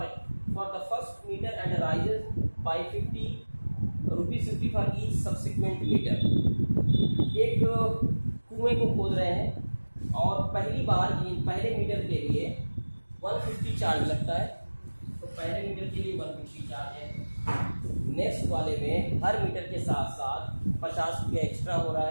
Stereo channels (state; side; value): inverted; both; correlation -1.00